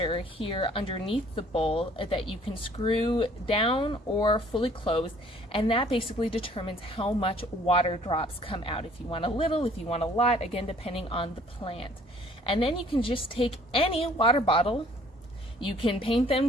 here underneath the bowl that you can screw down or fully close, and that basically determines how much water drops come out. If you want a little, if you want a lot, again depending on the plant. And then you can just take any water bottle, you can paint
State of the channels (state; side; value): normal; both; correlation 0.57